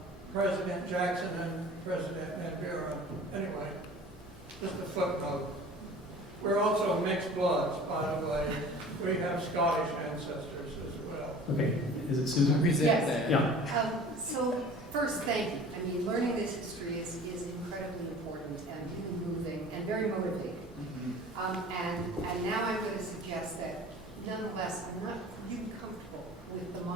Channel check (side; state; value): both; normal; correlation 0.43